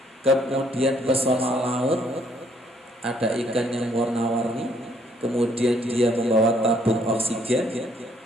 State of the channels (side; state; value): both; normal; correlation 0.67